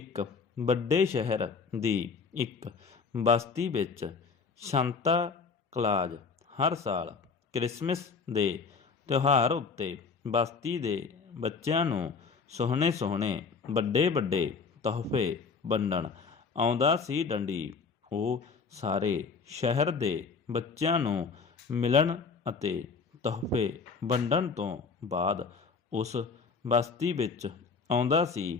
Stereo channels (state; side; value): quieter; right; 5.1 dB